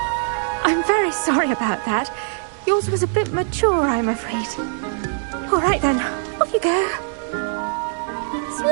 I'm very sorry about that. Yours was a bit mature, I'm afraid. All right then, off you go.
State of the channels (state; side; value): silent; left; digital silence